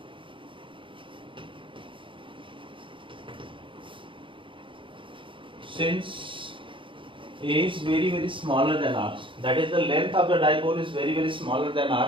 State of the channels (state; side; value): late; left; 0.25 ms